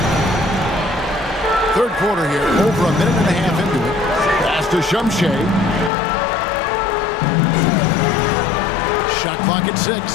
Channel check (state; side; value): drops out; right; at 5.9 s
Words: Third quarter here. Over a minute and a half into it. Pass to Shumshay. Shot clock at 6.